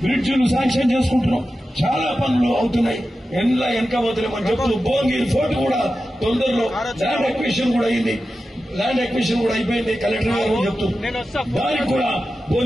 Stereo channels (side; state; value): both; normal; correlation 0.92